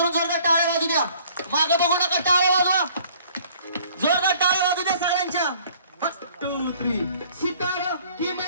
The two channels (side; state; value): both; inverted; correlation -0.57